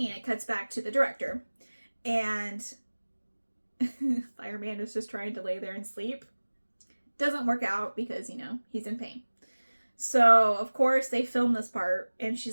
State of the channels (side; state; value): both; inverted; correlation -1.00